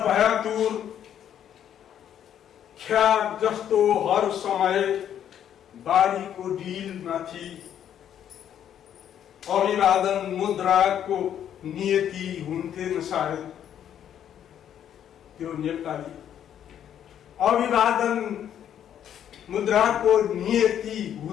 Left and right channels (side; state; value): right; quieter; 9.8 dB